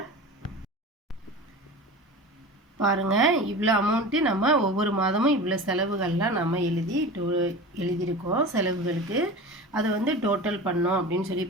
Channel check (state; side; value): normal; both; correlation 0.33